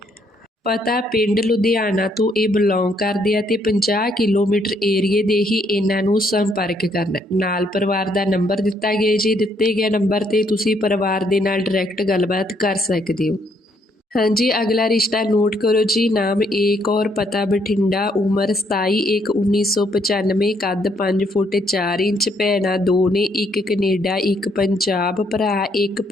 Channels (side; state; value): both; normal; correlation 0.70